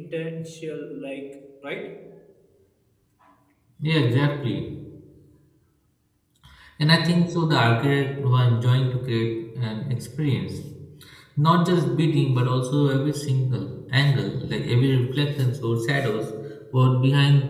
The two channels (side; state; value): both; identical; correlation 1.00